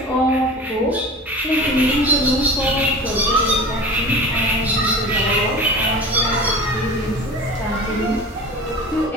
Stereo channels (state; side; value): normal; both; correlation 0.36